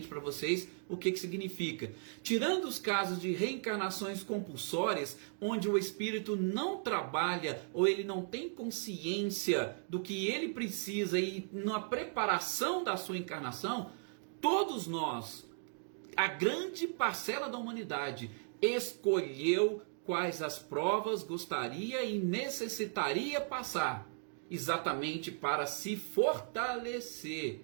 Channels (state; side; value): silent; left; 53 dB below the other